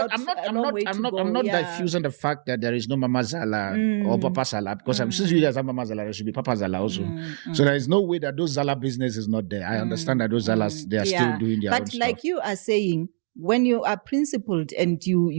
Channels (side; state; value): left; silent; 60 dB below the other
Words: diffusing the fact that there is no Mama Zala or Papa Zala because since you guys have Mama Zala, there should be Papa Zala also. So there is no way that those Zala business is not there. I understand that those Zalas they are still doing their own stuff. But like you are saying, when you are principled and you